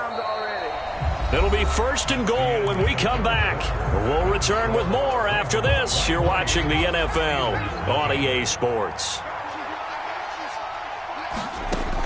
already. It'll be 1st and goal when we come back. We'll return with more after this. You're watching the NFL on EA Sports.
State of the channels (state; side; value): identical; both; correlation 1.00